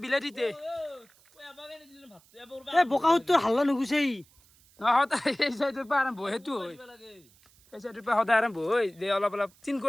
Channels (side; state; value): right; noise; hiss, 29 dB below the sound